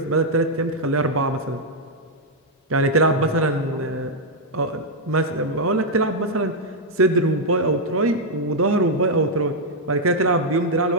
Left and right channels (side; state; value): both; normal; correlation -0.02